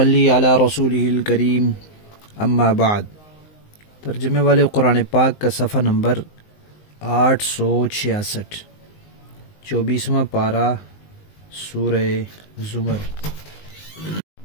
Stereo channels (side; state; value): right; late; 19 ms